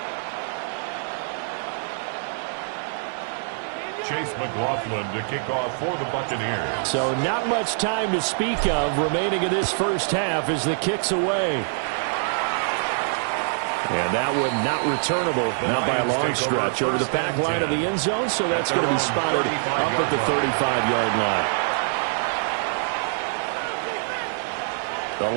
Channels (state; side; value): silent; left; 62 dB below the other